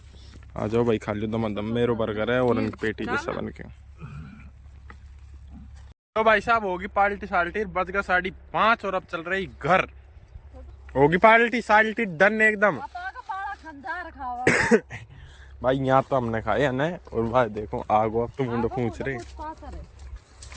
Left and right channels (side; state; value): both; identical; correlation 1.00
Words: आ जाओ भाई, खा लो दम दम। मेरो बर्गर है और उनकी पेटीज है सब उनके। तो भाई साहब होगी पार्टी साल्टी, बज गया 5:30 और अब चल रही घर। होगी पार्टी साल्टी डन एकदम। भाई यहाँ तो हमने खाए है ना। और भाई देखो आगो अब तो मुंडो पूछ रहे